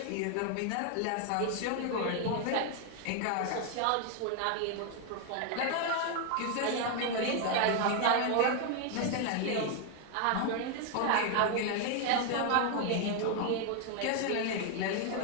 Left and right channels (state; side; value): different; both; correlation 0.01